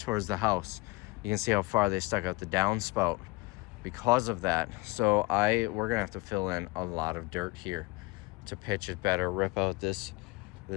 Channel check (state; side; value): quieter; right; 24.2 dB